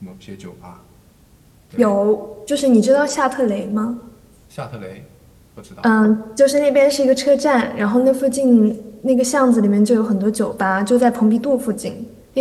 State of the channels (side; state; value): both; identical; correlation 1.00